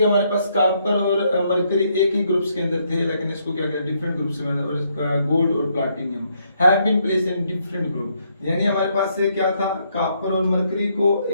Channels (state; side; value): inverted; both; correlation -0.73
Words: हमारे पास कॉपर और मरकरी एक ही ग्रुप्स के अंदर थे, लेकिन इसको क्या किया डिफरेंट ग्रुप्स में, और गोल्ड और platinum have been placed in different group. यानी हमारे पास क्या था, कॉपर और मरकरी को